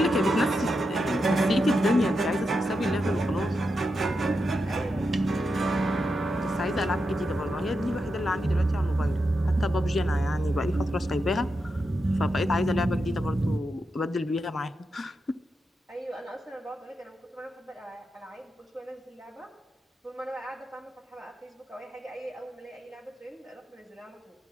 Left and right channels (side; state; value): both; normal; correlation 0.87